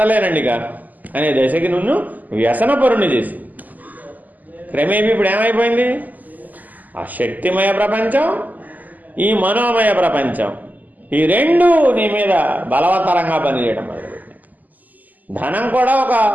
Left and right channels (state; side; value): late; left; 0.081 ms